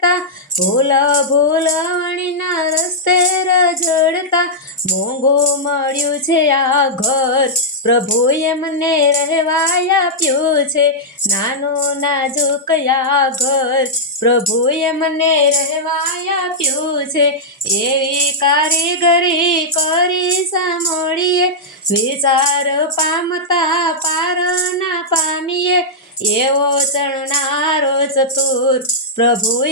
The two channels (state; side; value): normal; both; correlation -0.09